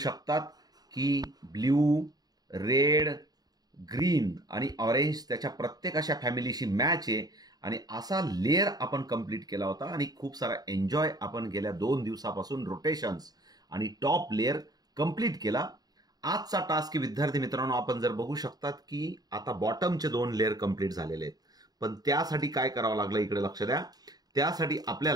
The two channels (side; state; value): left; late; 0.19 ms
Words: की ब्ल्यू, रेड, ग्रीन आणि ऑरेंज त्याच्या प्रत्येक अशा फॅमिलीशी मॅच आहे आणि असा लेअर आपण कंप्लीट केला होता आणि खूप सारा एन्जॉय आपण गेल्या 2 दिवसापासून रोटेशन्स आणि टॉप लेअर कंप्लीट केला. आजचा टास्क विद्यार्थी मित्रांनो आपण जर बघू शकतात की आता बॉटमचे 2 लेअर कंप्लीट झालेले आहेत. पण त्यासाठी काय करावं लागलं इकडे लक्ष द्या. त्यासाठी